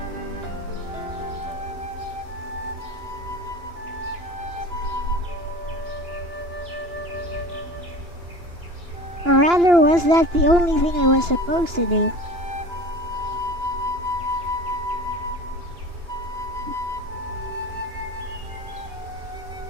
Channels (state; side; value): late; left; 2.9 ms